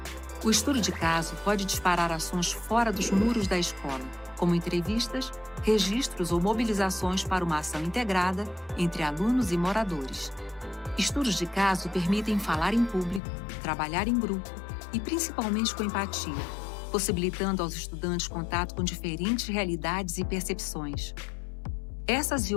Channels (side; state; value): right; drops out; at 13.2 s